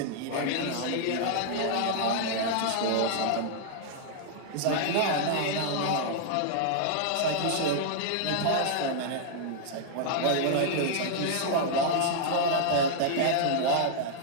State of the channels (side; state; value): both; different; correlation -0.01